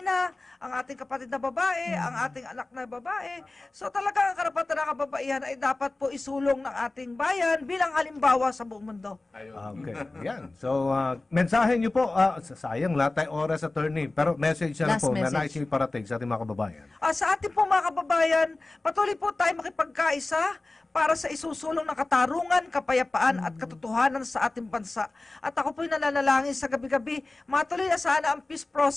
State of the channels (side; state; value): right; quieter; 3.1 dB